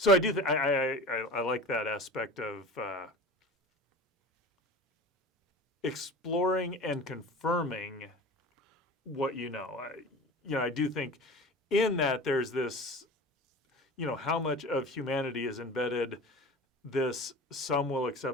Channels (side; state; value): both; normal; correlation 0.36